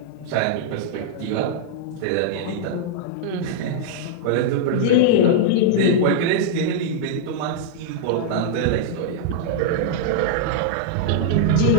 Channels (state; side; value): different; both; correlation -0.02